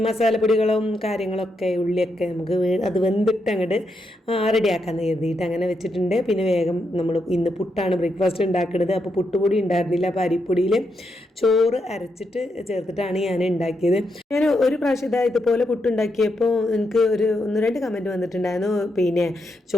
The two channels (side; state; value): both; normal; correlation 0.82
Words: മസാലപ്പൊടികളും കാര്യങ്ങളൊക്കെ ഉള്ളിയൊക്കെ നമുക്ക് അത് വെന്തിട്ട് അങ്ങോട്ട് റെഡിയാക്കാമെന്ന് കരുതിയിട്ട് അങ്ങനെ വെച്ചിട്ടുണ്ട്. പിന്നെ വേഗം നമ്മൾ ഇന്ന് പുട്ടാണ് ബ്രേക്ക്ഫാസ്റ്റ് ഉണ്ടാക്കുന്നത്. അപ്പോൾ പുട്ടുപൊടി ഉണ്ടായിരുന്നില്ല. അപ്പോൾ അരിപ്പൊടിയിൽ ചോറ് അരച്ചിട്ട് ചേർത്തിട്ടാണ് ഞാൻ ഉണ്ടാക്കിയത്. ഞാൻ ഒരു പ്രാവശ്യം ഇതുപോലെ പുട്ടുണ്ടാക്കിയപ്പോൾ എനിക്ക് 1-2 കമൻറ്റ് വന്നിട്ടുണ്ടായിരുന്നു. പിന്നെ